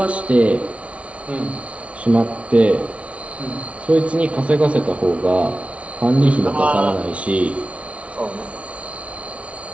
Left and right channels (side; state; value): left; late; 0.063 ms